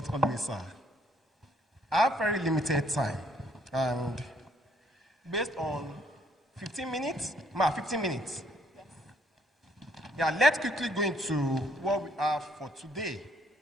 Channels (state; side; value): normal; both; correlation 0.67